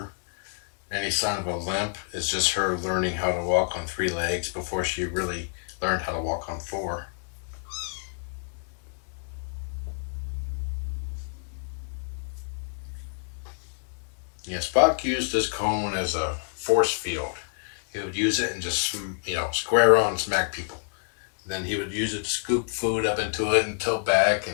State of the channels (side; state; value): right; silent; 59 dB below the other